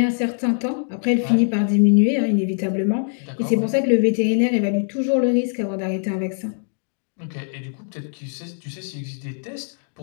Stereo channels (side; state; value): right; silent; digital silence